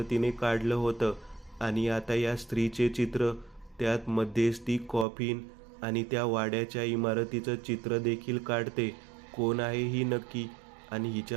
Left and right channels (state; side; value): drops out; left; at 5.1 s